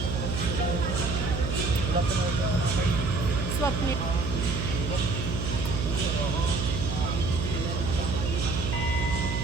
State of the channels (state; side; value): noise; right; hum, 2 dB below the sound